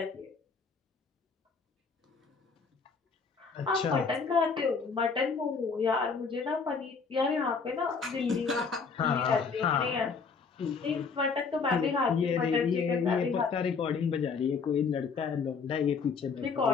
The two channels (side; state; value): right; quieter; 5.2 dB